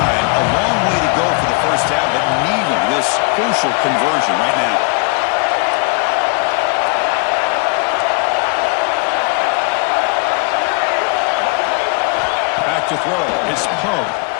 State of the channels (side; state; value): right; quieter; 34.1 dB